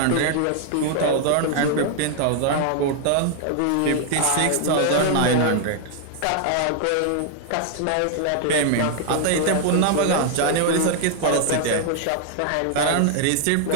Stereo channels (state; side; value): different; both; correlation 0.00